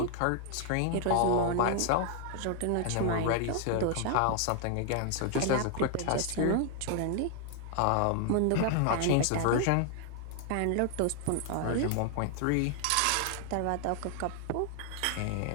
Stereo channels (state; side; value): different; both; correlation 0.00